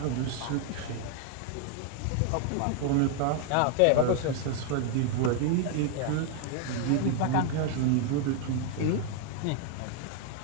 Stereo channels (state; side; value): different; both; correlation 0.00